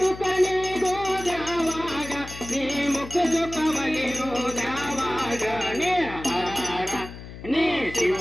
ನೀಡುವುದ್ಯಾವಾಗ ನೀ ಮುಖ ಸುಖ ಬಲಿರುವುದ್ಯಾವಾಗ ನೀ ಹರ ಹರ ನೀ ಶಿವ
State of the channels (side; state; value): left; noise; hum, 13 dB below the sound